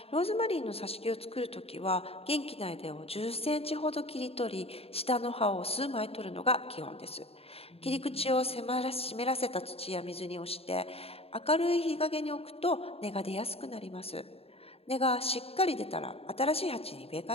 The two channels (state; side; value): late; right; 0.28 ms